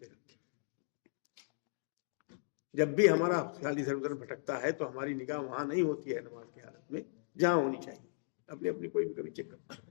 رکھے. جب بھی ہمارا خیال ادھر ادھر بھٹکتا ہے تو ہماری نگاہ وہاں نہیں ہوتی ہے نماز کی حالت میں جہاں ہونی چاہیے. اپنی کوئی بھی کبھی چیک کرتا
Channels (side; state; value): right; silent; digital silence